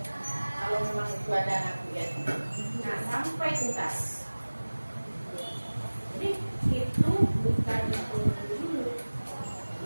Kalau memang itu ada anak kuliah. Nah, sampai tuntas. Jadi itu bukan itu dulu.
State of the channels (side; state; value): both; inverted; correlation -1.00